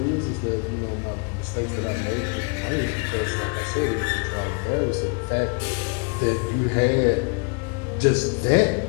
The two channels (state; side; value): quieter; right; 35.7 dB